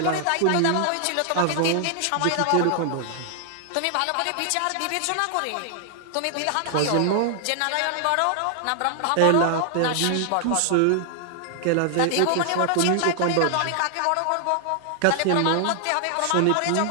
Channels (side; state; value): both; different; correlation 0.00